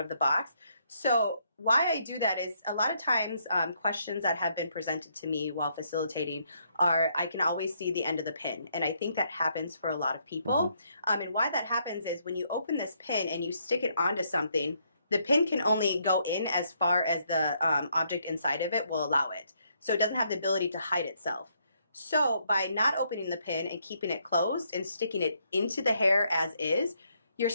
the box. So why I do that is a lot of times questions that have been presented to me while facilitating are, I can always see the end of the pin, and I think that happens for a lot of people. And why that happens is when you open this pin and you stick it onto something, the pin can only go in as far as the object inside of it will allow it. So it doesn't have the ability to hide itself. So by not opening the pin and keeping it closed and sticking it into the hair as is, you're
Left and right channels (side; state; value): both; inverted; correlation -0.73